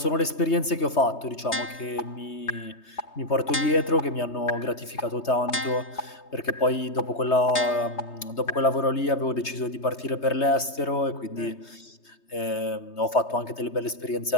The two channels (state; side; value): late; right; 3.2 ms